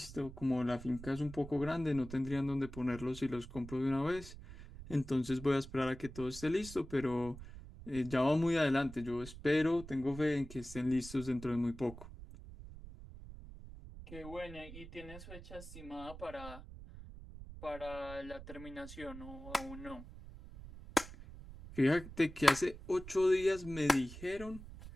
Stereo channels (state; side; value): noise; right; rumble, 14 dB below the sound